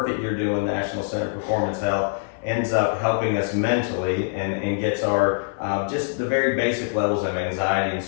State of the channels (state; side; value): silent; right; 57 dB below the other